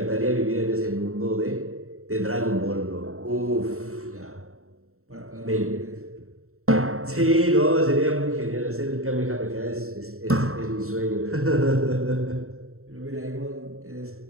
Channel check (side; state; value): left; late; 0.63 ms